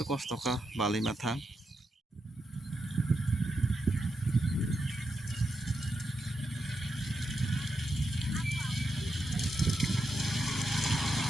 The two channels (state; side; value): normal; both; correlation 0.85